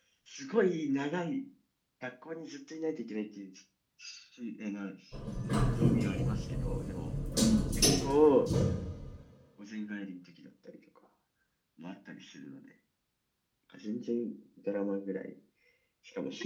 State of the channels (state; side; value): identical; both; correlation 1.00